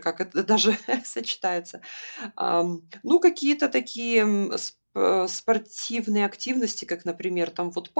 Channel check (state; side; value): inverted; both; correlation -1.00